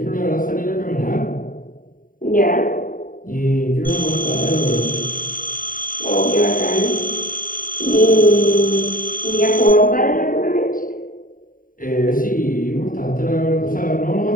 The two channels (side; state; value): right; late; 0.40 ms